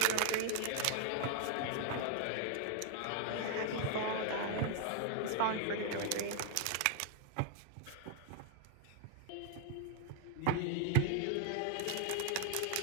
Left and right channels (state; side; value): different; both; correlation 0.00